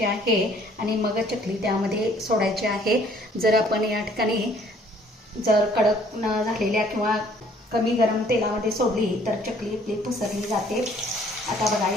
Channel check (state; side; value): normal; both; correlation 0.59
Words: आहे आणि मग चकली त्यामध्ये सोडायची आहे. जर आपण या ठिकाणी जर कडक न झालेल्या किंवा कमी गरम तेलामध्ये सोडली तर चकली आपली पसरली जाते. आता बघा,